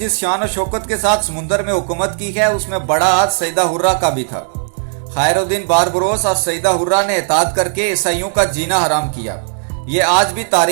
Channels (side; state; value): left; silent; digital silence